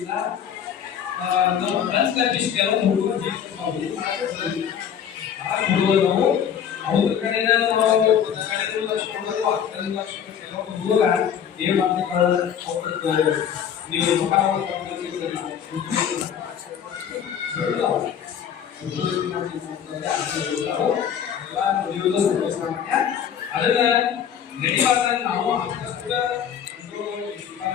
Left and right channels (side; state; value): right; quieter; 8.6 dB